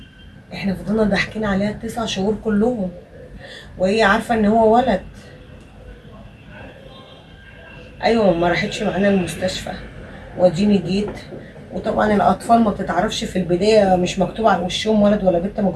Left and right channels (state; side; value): identical; both; correlation 1.00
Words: احنا فضلنا ضاحكين عليها ال9 شهور كلهم وهي عارفه ان هو ولد. ايوه، ما راحتش معانا المستشفى واديني جيت. وطبعا الاطفال ما بتتعرفش في البدايه، مش مكتوب على وشهم ولد ولا بنت، ما